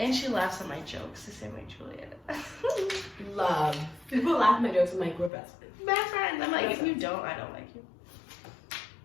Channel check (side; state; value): right; drops out; at 5.3 s